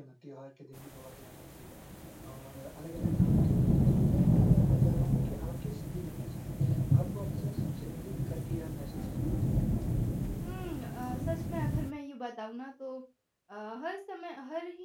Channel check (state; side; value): identical; both; correlation 1.00